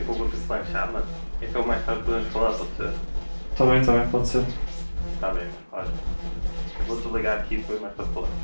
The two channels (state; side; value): inverted; both; correlation -1.00